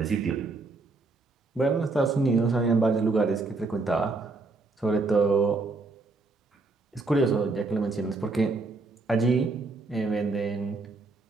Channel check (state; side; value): quieter; left; 3.5 dB